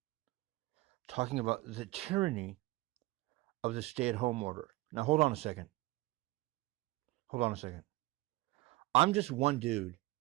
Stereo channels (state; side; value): quieter; left; 19.9 dB